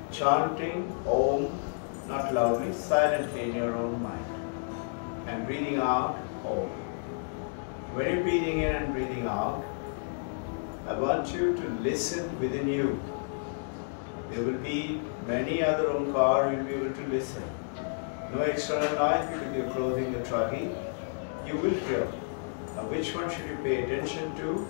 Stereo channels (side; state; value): right; silent; digital silence